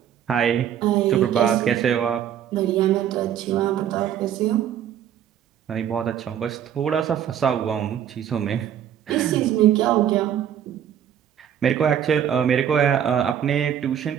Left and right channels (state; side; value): quieter; left; 9.7 dB